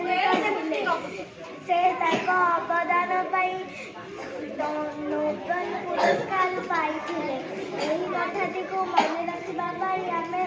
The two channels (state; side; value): identical; both; correlation 1.00